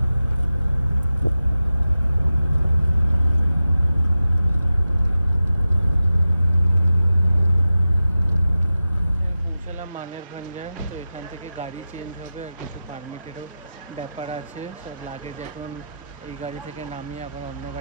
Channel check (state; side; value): inverted; both; correlation -0.93